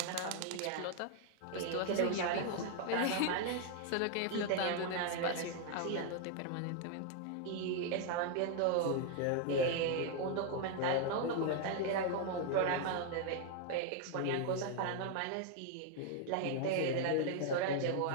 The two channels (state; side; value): different; both; correlation 0.00